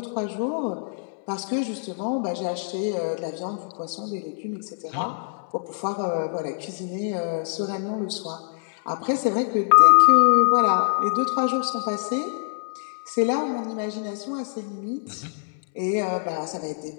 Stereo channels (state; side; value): silent; right; 62 dB below the other